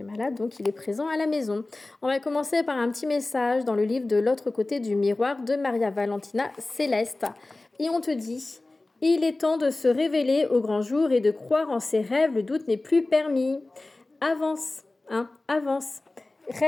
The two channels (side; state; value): right; quieter; 3.0 dB